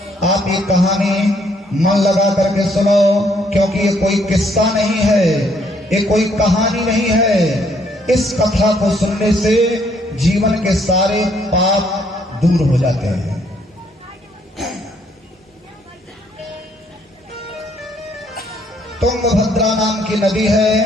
आप ये कहानी मन लगा करके सुनो, क्योंकि ये कोई किस्सा नहीं है, ये कोई कहानी नहीं है। इस कथा को सुनने से जीवन के सारे पाप दूर हो जाते हैं। तुंगभद्रा नाम की नदी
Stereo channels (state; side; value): normal; both; correlation 0.68